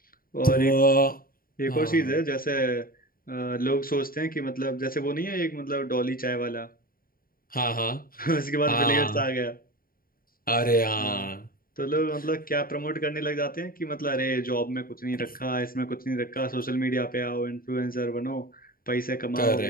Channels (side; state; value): right; late; 0.42 ms